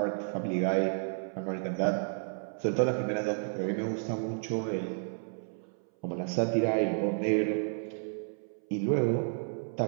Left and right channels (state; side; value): silent; left; 57 dB below the other